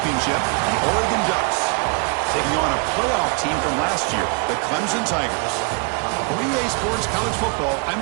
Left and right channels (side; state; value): left; quieter; 34.7 dB